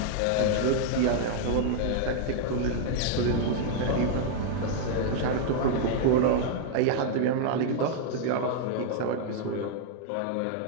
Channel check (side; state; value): both; different; correlation -0.01